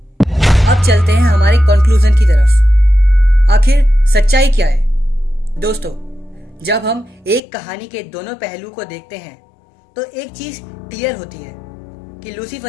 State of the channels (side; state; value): right; drops out; at 7.4 s